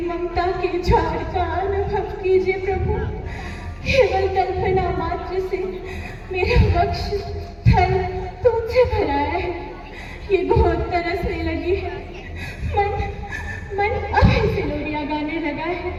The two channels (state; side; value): identical; both; correlation 1.00